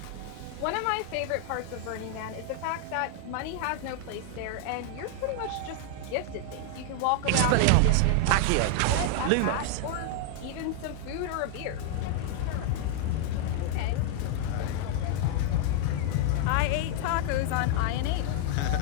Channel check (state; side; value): different; both; correlation 0.00